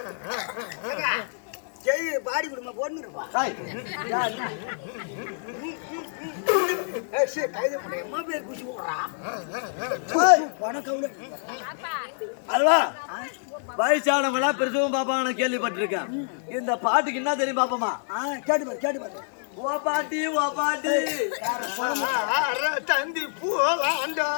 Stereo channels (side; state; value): right; silent; digital silence